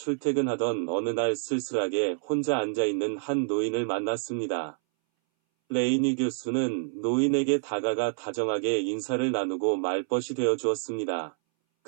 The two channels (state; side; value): silent; left; 60 dB below the other